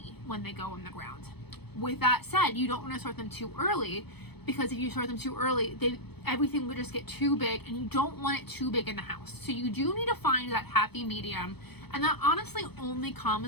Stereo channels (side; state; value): right; late; 0.98 ms